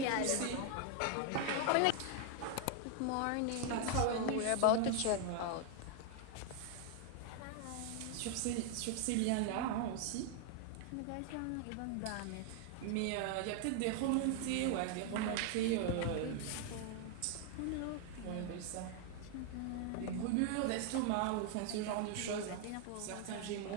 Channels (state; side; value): different; both; correlation 0.00